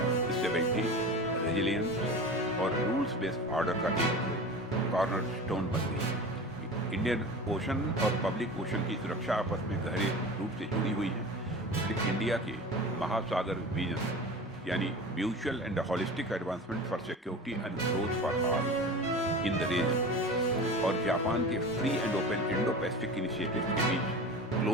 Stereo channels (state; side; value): normal; both; correlation 0.33